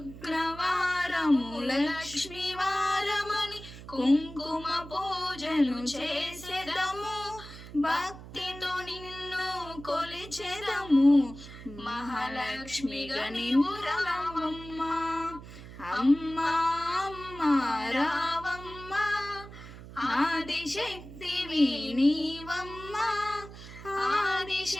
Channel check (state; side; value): noise; right; hum, 15 dB below the sound